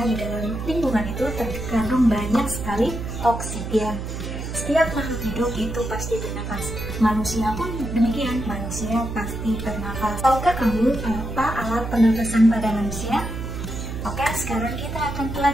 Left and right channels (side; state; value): right; noise; hum, 6 dB below the sound